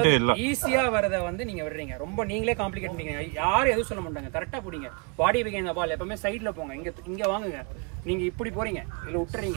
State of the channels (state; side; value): quieter; left; 32.5 dB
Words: இல்ல. ஈஸியா வரத வந்து நீங்க விடுறீங்க. ரொம்ப நீங்களே காம்ப்ளிகேட் பண்ணீங்க. யாரும் எதுவும் சொல்ல மாட்டாங்க. கரெக்டா போடுங்க. பாடி பிகைன் த பால். எப்பவுமே சைடுல போங்க. இங்க வாங்குங்க. நீங்க இப்படி போறீங்க, இல்ல